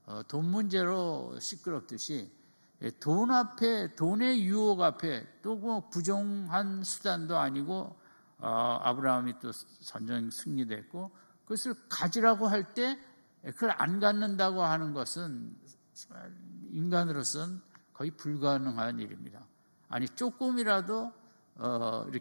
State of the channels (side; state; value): both; inverted; correlation -1.00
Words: 돈 문제로 시끄럽듯이 돈 앞에, 돈의 유혹 앞에 또 뭐 부정한 수단도 아니고 아브라함이 또 전쟁 승리됐고 그것을 가지라고 할 때 그걸 안 갖는다고 하는 것은 인간으로서는 거의 불가능한 일입니다. 아니 조금이라도